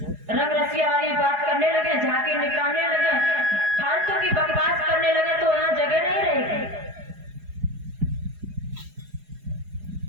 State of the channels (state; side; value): late; left; 4.8 ms